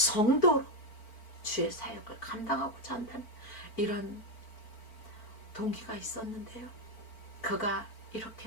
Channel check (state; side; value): late; right; 4.4 ms